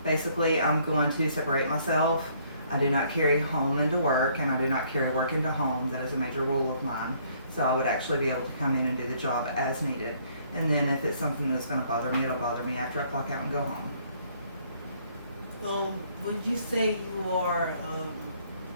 basically I'm going to separate myself. I do not carry home into work, and I do not carry work into home. That is a major rule of mine. So I would actually be able to come in and do the job as needed. And then if it's something that's going to bother me, it'll bother me after I clock out and go home. Would you say you are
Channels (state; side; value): inverted; both; correlation -0.64